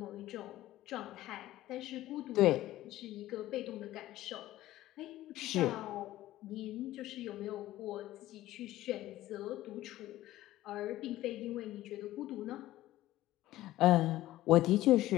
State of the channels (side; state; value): right; quieter; 15.9 dB